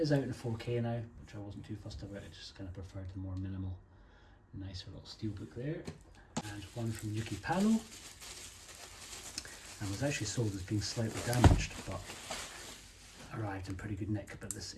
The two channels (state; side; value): identical; both; correlation 1.00